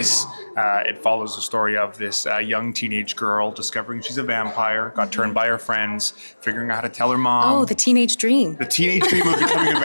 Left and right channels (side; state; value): both; inverted; correlation -1.00